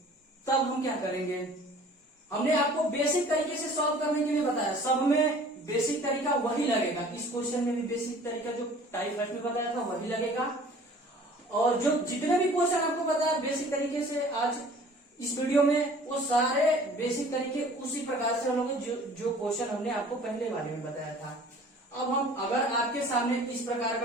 तब हम क्या करेंगे? हमने आपको बेसिक तरीके से सॉल्व करने के लिए बताया, सब में बेसिक तरीका वही लगेगा। इस क्वेश्चन में भी बेसिक तरीका जो टाइप फर्स्ट में बताया था वही लगेगा, और जो जितने भी क्वेश्चन आपको बताया बेसिक तरीके से आज इस वीडियो में, वो सारे बेसिक तरीके उसी प्रकार से हम लोग जो क्वेश्चन हमने आपको पहले वाले में बताया था। अब हम अगर आपके सामने इस प्रकार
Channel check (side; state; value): both; normal; correlation 0.49